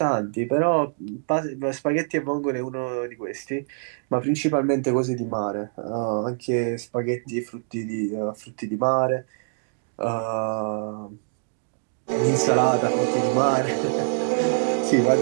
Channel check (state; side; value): silent; left; digital silence